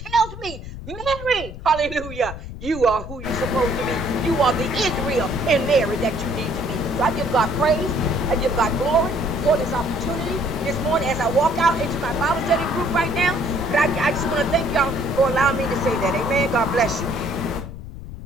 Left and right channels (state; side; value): noise; left; rumble, 11 dB below the sound